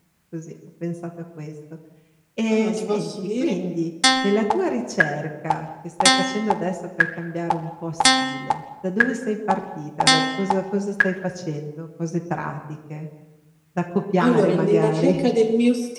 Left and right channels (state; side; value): identical; both; correlation 1.00